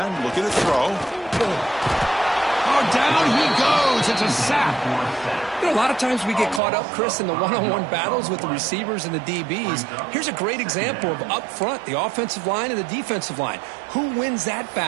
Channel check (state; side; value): drops out; left; at 6.6 s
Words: looking to throw. Oh, down he goes. It's a sack. You know, a lot of times we get caught up, Chris, in the one-on-one battles with the receivers and the DBs. Here's a great example of up front, the offensive line and the defensive line. Who wins that